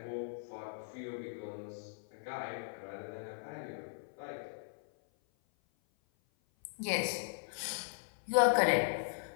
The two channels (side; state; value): right; silent; 53 dB below the other